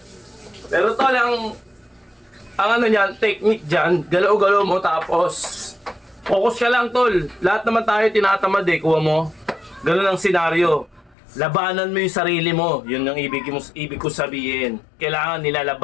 Pero tol, ang ano niyan, technique dyan, galaw-galaw mo tapos focus ka lang tol. Lahat naman tayo tinatamad eh, kuha mo. Ganun ang senaryo. Labanan mo yung sarili mo. Yun ang ibig ko sabihin. Kailangan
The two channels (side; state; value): right; drops out; at 11.2 s